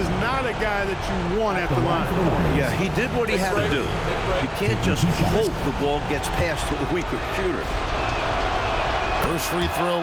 not a guy that you want at the line. Yeah, he did what he had to do. You can't just hope the ball gets past to a weaker shooter. First free throw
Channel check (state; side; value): identical; both; correlation 1.00